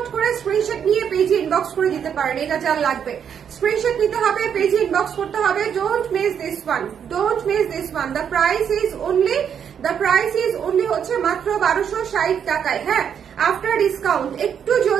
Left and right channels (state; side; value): quieter; left; 8.1 dB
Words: করে স্ক্রিনশট নিয়ে পেজে ইনবক্স করে দিতে পারেন। এটা যার লাগবে স্ক্রিনশট নিতে হবে, পেজে ইনবক্স করতে হবে। Don't miss this one, don't miss this one. The price is only হচ্ছে মাত্র 1260 টাকায়। হ্যাঁ, আফটার ডিসকাউন্ট একটু